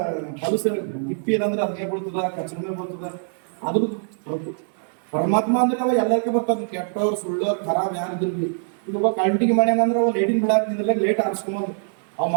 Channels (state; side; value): silent; left; 62 dB below the other